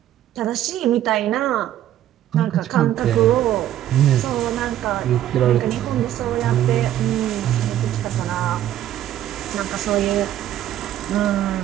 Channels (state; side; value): quieter; left; 12.1 dB